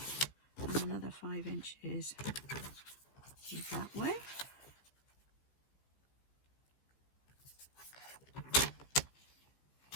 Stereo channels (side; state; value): right; late; 15 ms